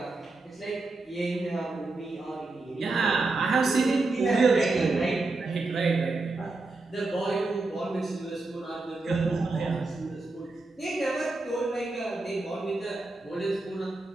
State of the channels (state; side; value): quieter; left; 3.4 dB